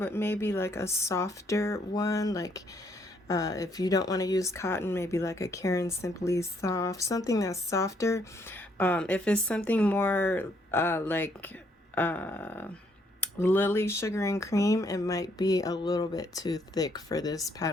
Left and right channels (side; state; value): both; normal; correlation 0.70